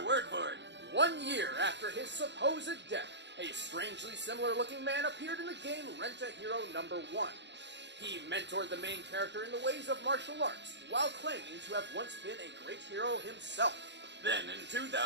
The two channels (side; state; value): left; late; 0.52 ms